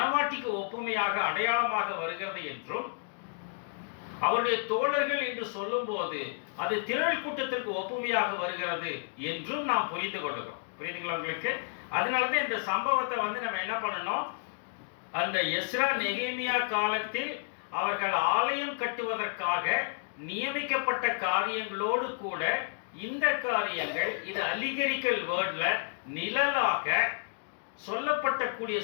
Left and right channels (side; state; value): right; silent; digital silence